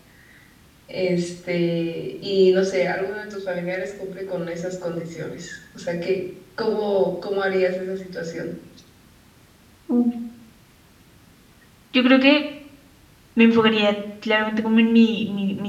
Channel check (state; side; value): identical; both; correlation 1.00